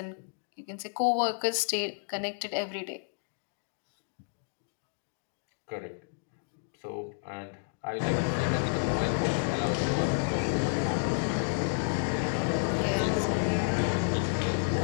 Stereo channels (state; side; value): silent; right; digital silence